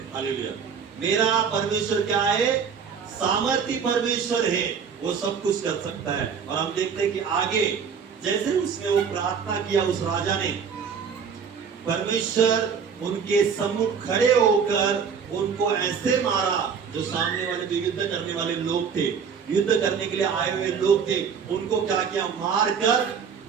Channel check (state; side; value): quieter; left; 6.5 dB